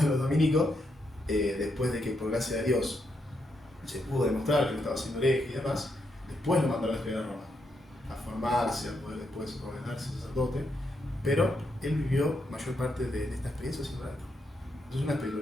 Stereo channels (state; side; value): normal; both; correlation 0.80